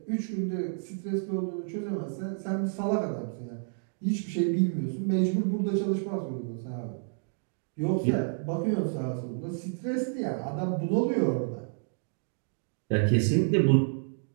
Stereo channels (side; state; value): left; silent; digital silence